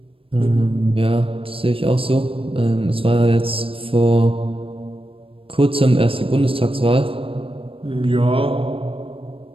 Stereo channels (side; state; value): left; late; 0.27 ms